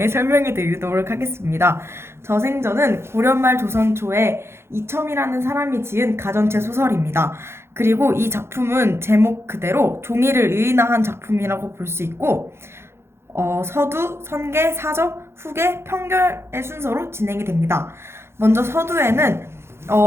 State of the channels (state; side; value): late; left; 0.12 ms